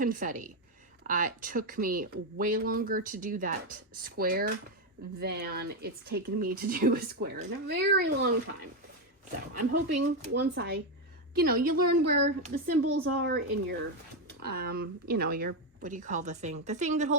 It took me way longer to do that square than it's taken me to do a square in a very long time. So I'm hoping once you learn where the symbols are in your, your, what do you call the thing? The thing that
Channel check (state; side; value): normal; both; correlation 0.07